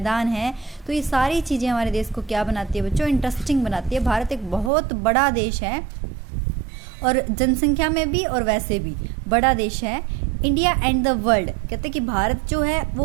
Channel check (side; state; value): left; drops out; at 4.7 s